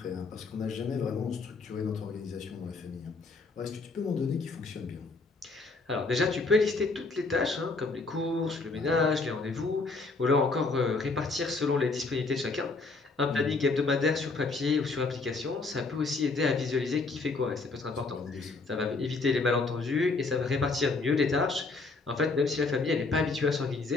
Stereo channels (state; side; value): quieter; right; 3.8 dB